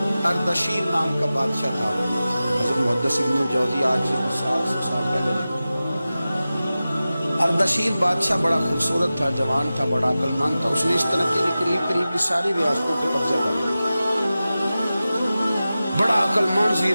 اردشیر نام کا بادشاہ تھا، حضرت محدث ابن الجوزی آج 700 سال پہلے لکھتے ہیں۔ اردشیر بادشاہ بڑا خوبصورت تھا، جوان تھا، بڑا عقل مند تھا، اس نے اس طرح کی قریب قریب کی ساری ریاستوں پہ قبضہ کر لیا، بڑا عقل مند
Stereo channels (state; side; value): inverted; both; correlation -0.95